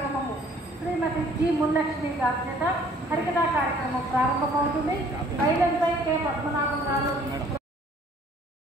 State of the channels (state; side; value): normal; both; correlation 0.57